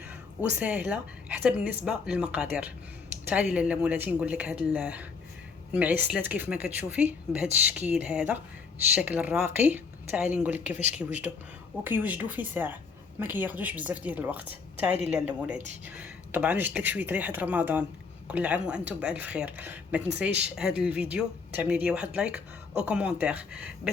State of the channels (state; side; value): quieter; right; 5.1 dB